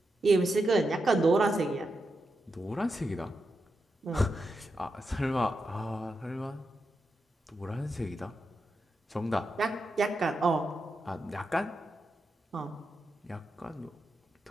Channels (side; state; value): both; normal; correlation 0.87